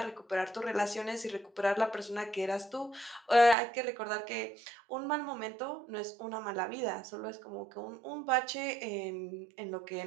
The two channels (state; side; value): drops out; left; at 3.6 s